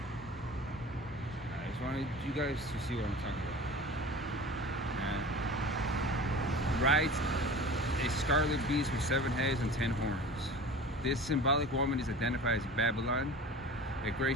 I just wanted you guys to see what I'm talking about. Rides a scarlet beast with 7 heads and 10 horns. This symbolic woman is identified as Babylon, a great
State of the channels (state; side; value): normal; both; correlation 0.37